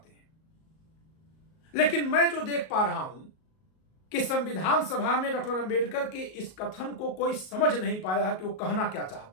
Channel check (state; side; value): late; right; 38 ms